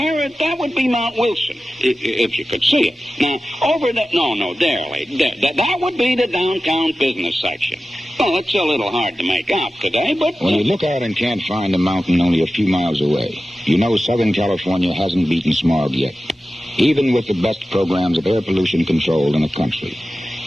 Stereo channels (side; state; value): both; normal; correlation 0.94